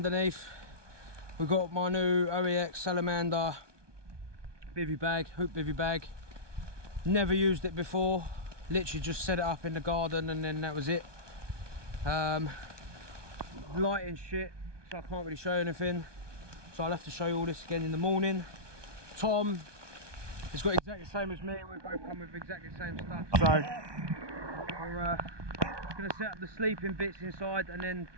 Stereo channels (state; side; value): late; left; 1.2 ms